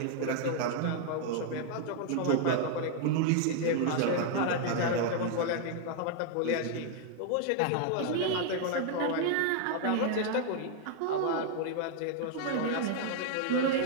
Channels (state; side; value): different; both; correlation 0.00